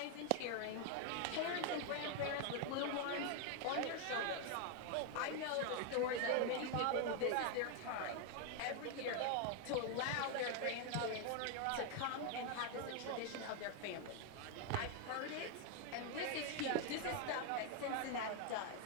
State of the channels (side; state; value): both; different; correlation 0.01